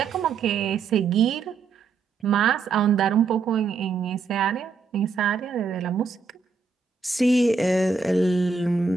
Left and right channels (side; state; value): left; quieter; 4.9 dB